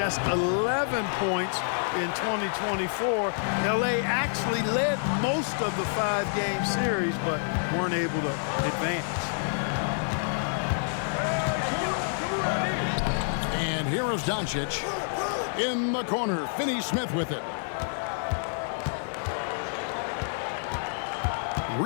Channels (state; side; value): silent; right; 56 dB below the other